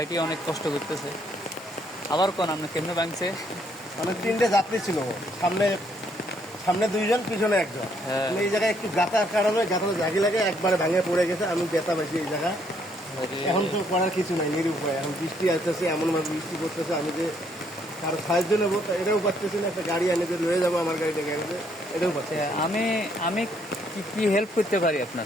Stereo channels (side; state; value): both; normal; correlation 0.69